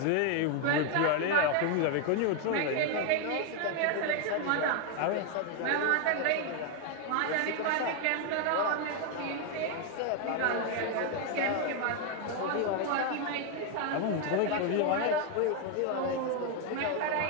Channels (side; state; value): both; different; correlation 0.01